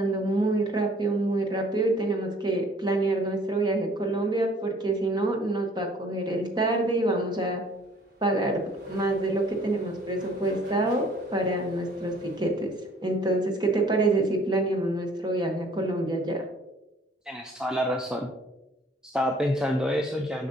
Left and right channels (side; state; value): both; normal; correlation 0.56